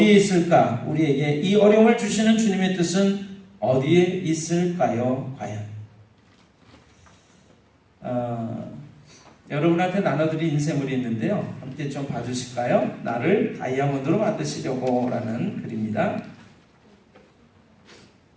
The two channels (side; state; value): both; identical; correlation 1.00